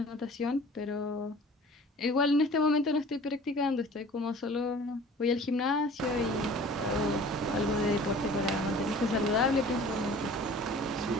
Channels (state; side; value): normal; both; correlation 0.46